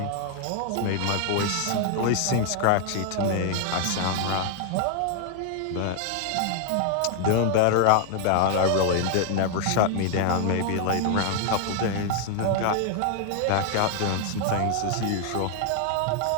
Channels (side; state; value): both; different; correlation 0.00